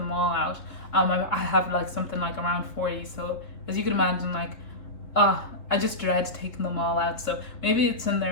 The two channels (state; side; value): late; right; 3.9 ms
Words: all out. I have like something like around 40, so as you can imagine, like I just dread taking them all out, so maybe it's in